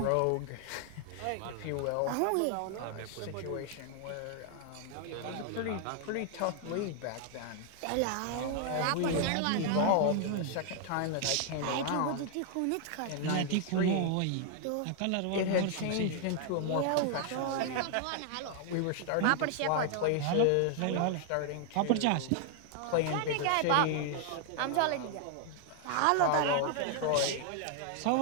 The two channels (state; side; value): different; both; correlation 0.00